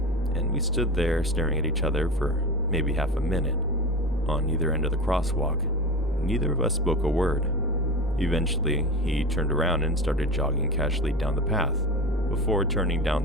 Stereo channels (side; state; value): both; normal; correlation 0.28